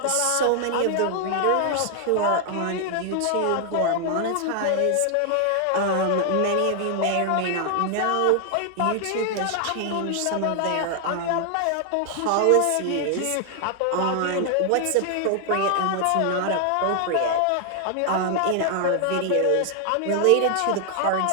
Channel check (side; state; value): both; different; correlation 0.00